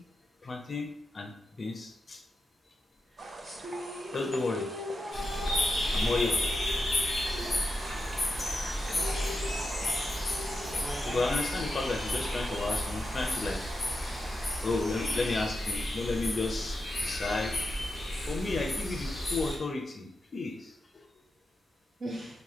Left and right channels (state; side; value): normal; both; correlation 0.88